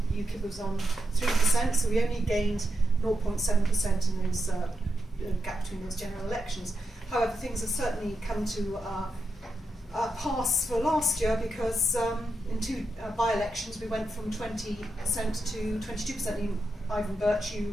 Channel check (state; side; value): normal; both; correlation 0.86